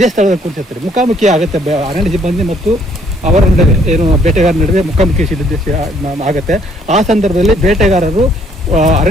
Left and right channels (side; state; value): both; normal; correlation 0.64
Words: ಸ್ಥಳದಲ್ಲಿ ಕೂತಿರ್ತಾರೆ. ಮುಖಾಮುಖಿ ಆಗುತ್ತೆ ಅರಣ್ಯ ಸಿಬ್ಬಂದಿ ಮತ್ತು ಅವರ ನಡುವೆ ಏನು ಬೇಟೆಗಾರರ ನಡುವೆ ಮುಖಾಮುಖಿ ಆಗುತ್ತೆ. ಆ ಸಂದರ್ಭದಲ್ಲಿ ಬೇಟೆಗಾರರು